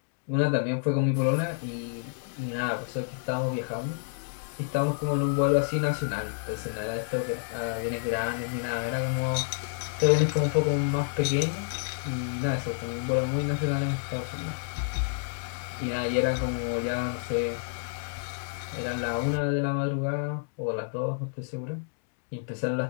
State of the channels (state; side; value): silent; right; digital silence